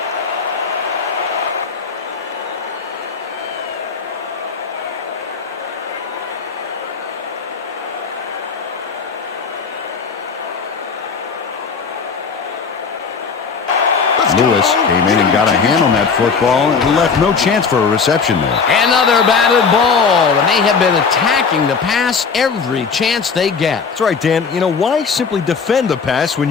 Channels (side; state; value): right; quieter; 5.5 dB